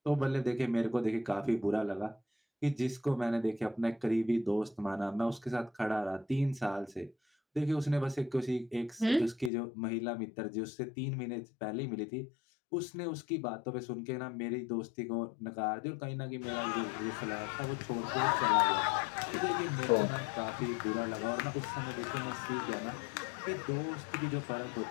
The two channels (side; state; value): right; drops out; at 9.5 s